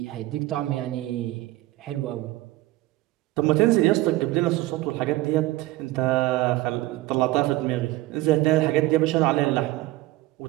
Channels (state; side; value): quieter; left; 17.8 dB